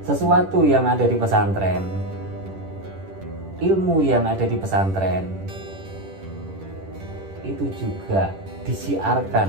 sesuatu yang ada di pesantren, ilmu yang ada di pesantren itu juga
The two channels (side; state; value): left; late; 10 ms